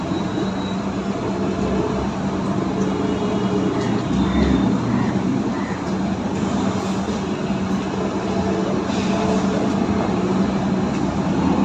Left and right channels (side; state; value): both; identical; correlation 1.00